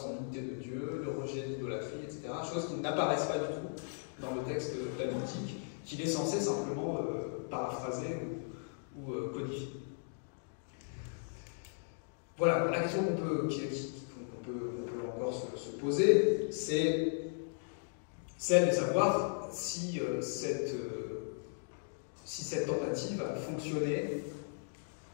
en l'unité de Dieu, le rejet de l'idolâtrie, etc. Choses qui n'apparaissent pas du tout dans le texte talmudique, qu'il est censé simplement paraphraser ou codifier. Voilà, la question qu'on peut encore se poser, c'est celle de savoir si cette tentative a fonctionné,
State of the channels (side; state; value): right; silent; digital silence